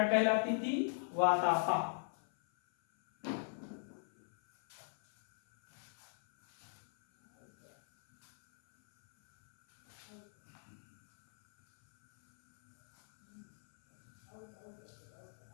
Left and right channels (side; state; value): right; silent; 52 dB below the other